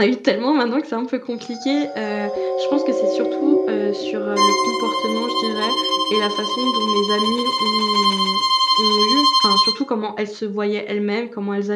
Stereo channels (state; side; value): identical; both; correlation 1.00